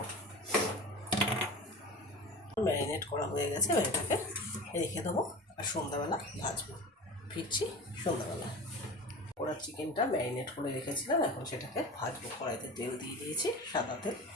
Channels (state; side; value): normal; both; correlation 0.33